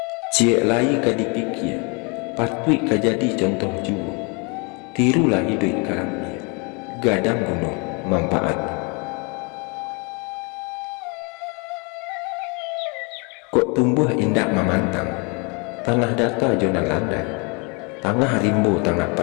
Ciek lai kadipikir, patut kajadi contoh juru, tirulah hidup karamnya, gadang gunung manfaat. Kok tumbuh indah memantang, tanah data jona landai, tangah rimbo tangah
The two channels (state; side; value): quieter; right; 32.4 dB